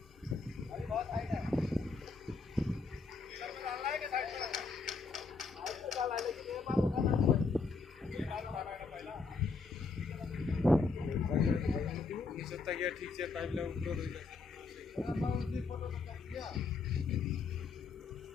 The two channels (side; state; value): right; quieter; 4.3 dB